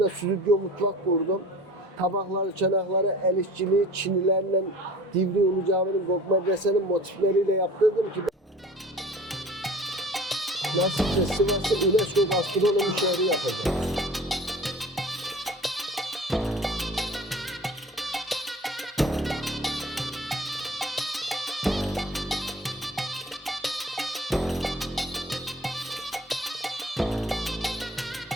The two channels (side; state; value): both; normal; correlation 0.43